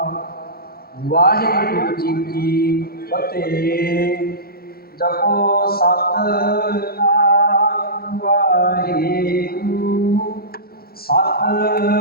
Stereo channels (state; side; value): late; right; 0.44 ms